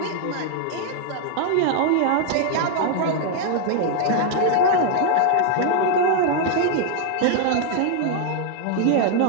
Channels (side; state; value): both; different; correlation 0.00